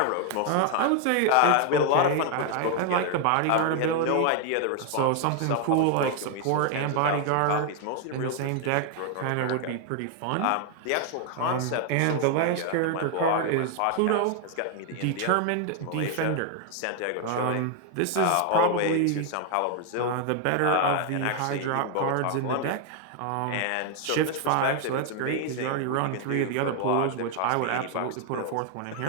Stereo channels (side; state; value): both; different; correlation 0.00